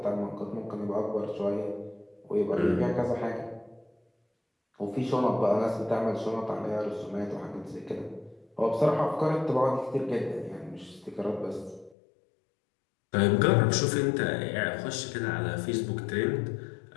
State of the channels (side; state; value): right; drops out; at 12.0 s